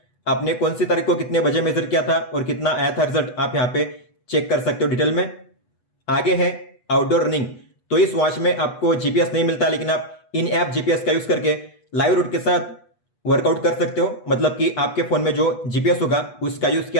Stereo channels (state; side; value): late; right; 8.2 ms